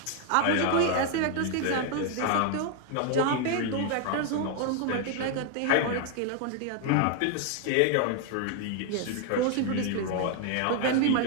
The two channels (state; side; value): different; both; correlation 0.00